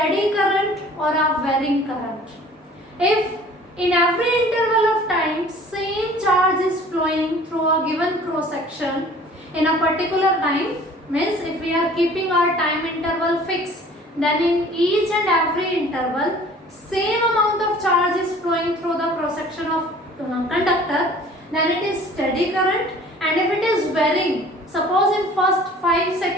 current or a varying current. If in every interval of time same charge is flowing through a given cross section in a particular time, means if we are keeping our time interval fixed, then in each and every interval same amount of charge is flowing through the cross section of conductor, then it is steady current. And if it is varying, suppose in first 5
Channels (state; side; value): normal; both; correlation 0.49